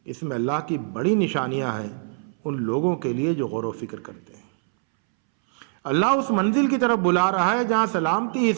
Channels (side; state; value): left; silent; 63 dB below the other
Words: اس میں اللہ کی بڑی نشانیاں ہیں ان لوگوں کے لیے جو غور و فکر کرتے ہیں۔ اللہ اس منزل کی طرف بلا رہا ہے جہاں سلامتی ہی